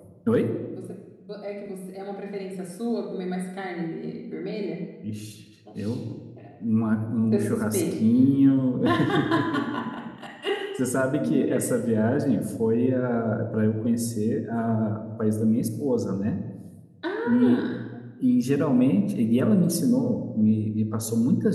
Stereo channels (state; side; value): identical; both; correlation 1.00